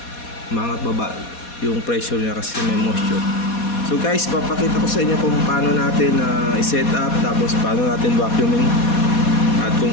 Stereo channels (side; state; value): right; late; 4.2 ms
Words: yung pressure niya kasi may moisture. So guys, papakita ko sa inyo kung paano natin i-set up, tapos paano natin vacuuming at